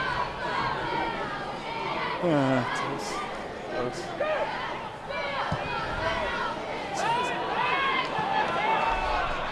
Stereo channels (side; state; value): both; identical; correlation 1.00